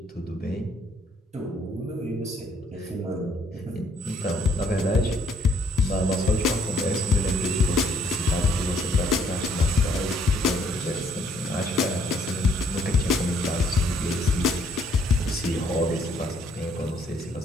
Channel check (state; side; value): normal; both; correlation 0.66